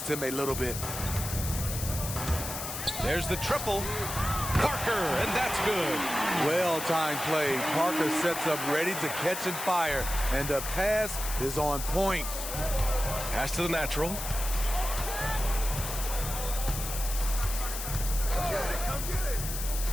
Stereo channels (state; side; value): noise; left; hiss, 6 dB below the sound